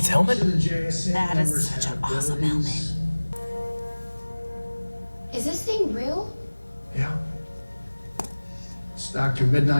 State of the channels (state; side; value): inverted; both; correlation -1.00